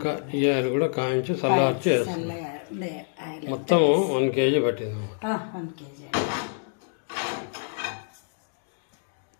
ఈ ఆయిల్ కూడా కాంచి చల్లార్చి మొత్తం 1 kg పట్టింది. 1 kg.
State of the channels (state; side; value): silent; right; 60 dB below the other